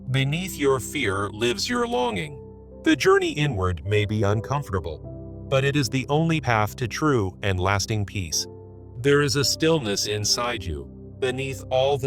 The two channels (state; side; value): identical; both; correlation 1.00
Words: Beneath your fear lives your longing. The journey inward may be uncomfortable, but it is the only path to true and lasting peace. There is a stillness inside you, beneath all